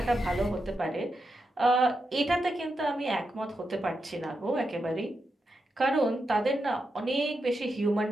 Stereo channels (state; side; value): normal; both; correlation 0.86